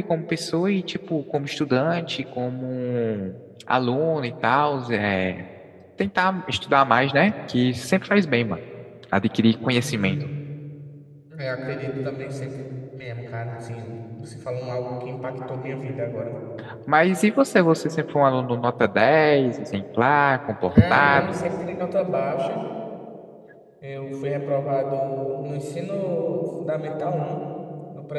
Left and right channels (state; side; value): identical; both; correlation 1.00